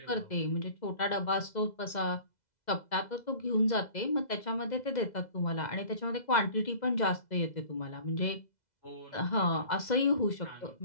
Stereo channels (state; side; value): late; right; 2.0 ms